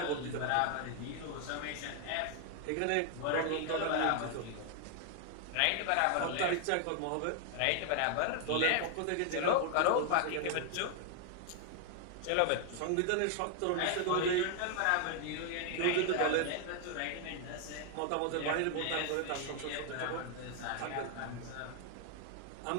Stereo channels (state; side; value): different; both; correlation 0.00